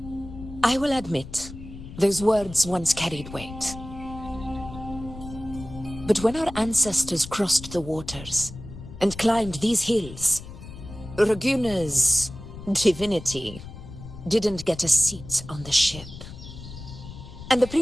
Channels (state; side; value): noise; left; rumble, 13 dB below the sound